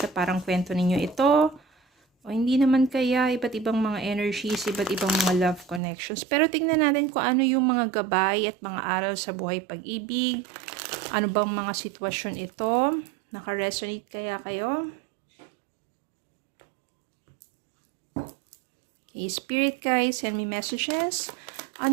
na parang kwento ninyo ito. O hindi naman kaya, iba't ibang mga energies, iba't ibang mga love connections. Pero tingnan natin kung ano yung mga gabay at mga aral sa buhay pag-ibig. Ano bang mga sitwasyon ito? Nakaresonate kaya kayo? Okay, Spirit guys, send me messages.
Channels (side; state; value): left; drops out; at 5.8 s